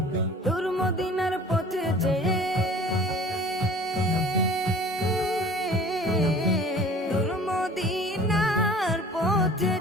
দূর মদিনার পথে চেয়ে, দূর মদিনার পথে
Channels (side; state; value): both; normal; correlation 0.46